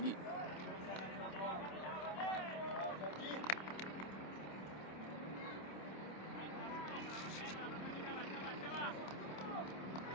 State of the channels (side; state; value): right; late; 27 ms